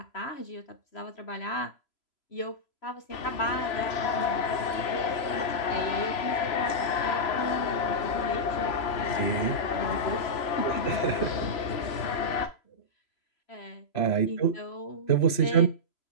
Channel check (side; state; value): right; late; 3.0 ms